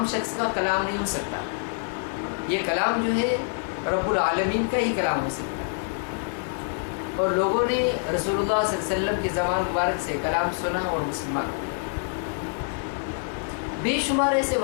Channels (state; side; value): silent; right; 61 dB below the other